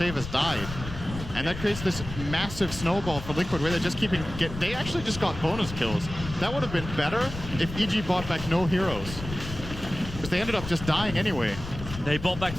has died. And that creates this massive snowball for Liquid where they're just they actually just got bonus kills. That would have been better if EG bought back no heroes, because they ended up just dying anyway. They brought back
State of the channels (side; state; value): left; noise; rumble, 9 dB below the sound